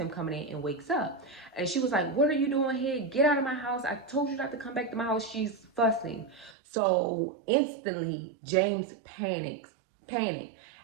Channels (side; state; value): left; drops out; at 6.6 s